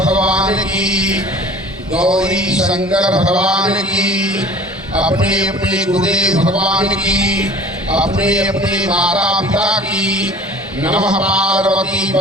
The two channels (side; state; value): both; normal; correlation 0.45